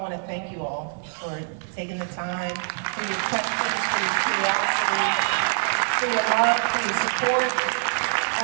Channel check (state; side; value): silent; left; digital silence